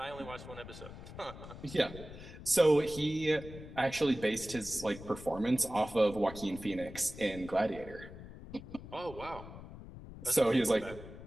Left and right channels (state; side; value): noise; left; rumble, 14 dB below the sound